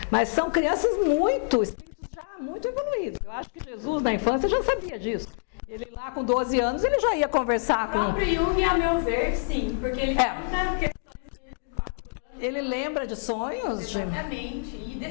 mas são crianças muito evoluídos. Eu acho que Jesus, na infância, já sabia disso. Ele lá com 12 anos, ele já ia conversar com... O próprio Jung, a meu ver, sim, porque ele conta questões de 4 anos. Ele lembra de sonhos? Exatamente, e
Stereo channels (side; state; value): right; silent; digital silence